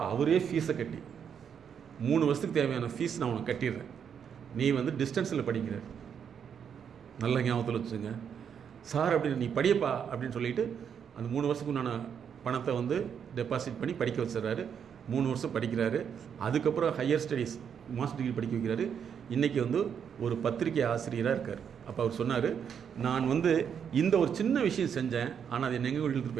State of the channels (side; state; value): left; quieter; 7.7 dB